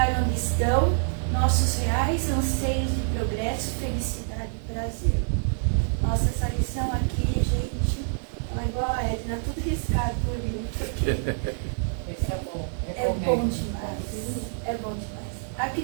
onde estão nossos reais anseios de progresso, felicidade e prazer. Nossa, essa lição aqui, gente, ela é igual a Edna, tudo riscado por livro, porque Esse é bom. é bom demais. É bom demais. A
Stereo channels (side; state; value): left; silent; digital silence